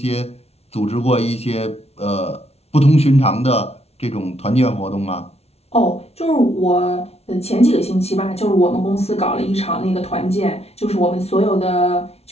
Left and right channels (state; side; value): late; right; 0.30 ms